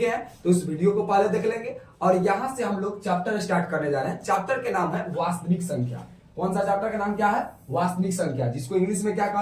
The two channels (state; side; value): identical; both; correlation 1.00